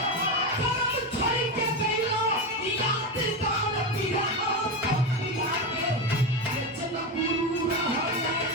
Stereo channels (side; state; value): both; normal; correlation 0.16